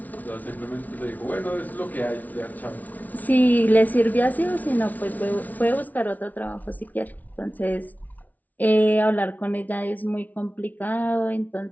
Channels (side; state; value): right; late; 0.076 ms